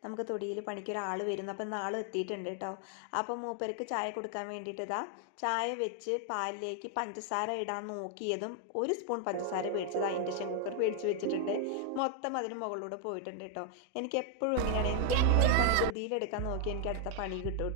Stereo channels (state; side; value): different; both; correlation 0.00